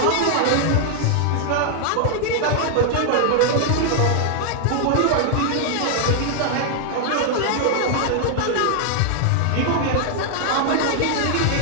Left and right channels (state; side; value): different; both; correlation 0.00